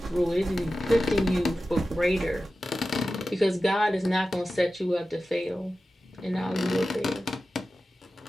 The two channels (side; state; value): both; normal; correlation 0.94